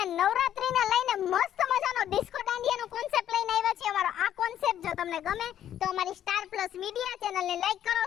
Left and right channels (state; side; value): quieter; right; 10.8 dB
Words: નવરાત્રીને લઈને મસ્ત મજાનો ડિસ્કો દાંડિયાનો કોન્સેપ્ટ લઈને આવ્યા છીએ. અમારો આ કોન્સેપ્ટ જો તમને ગમે તો અમારી સ્ટાર પ્લસ મીડિયા ચેનલને લાઈક કરો,